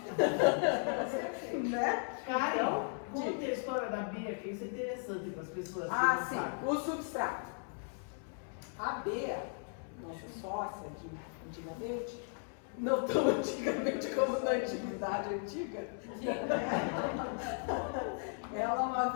Né? Karen, Então, conta a história da Bia, que isso é interessante para as pessoas que ah, não sim, sabem. o substrato. A Bea, nossa sócia de antigamente, não tão antigamente como na antiguidade antiga, ela uma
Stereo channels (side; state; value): right; silent; 54 dB below the other